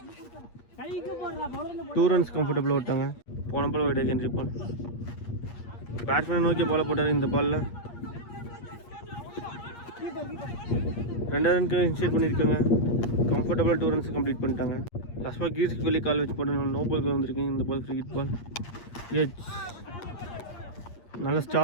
2 runs கம்ஃபர்டபுளாக விட்டாங்க. போன பால் வைட் ஹென்ரி பால். பேட்ஸ்மேனை நோக்கி பாலை போட்டார் இந்த பாலில். 2 ரனுக்கு இன்ஷியேட் பண்ணியிருக்காங்க. கம்ஃபர்டபுளாக 2 runs கம்ப்ளீட் பண்ணிட்டாங்க. லாஸ்ட் பால் கீர்ஸ்க்கு வெளியே கால் வச்சு போட்டு நோ பால் வந்திருக்கு. இந்த பால் ஃப்ரீ ஹிட் பால். எச் நல்ல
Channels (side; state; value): right; late; 8.5 ms